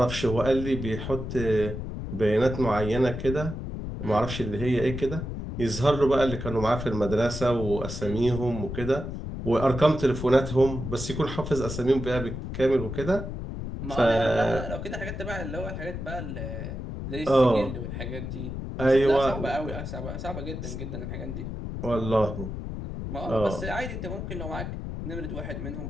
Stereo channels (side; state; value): left; noise; rumble, 6 dB below the sound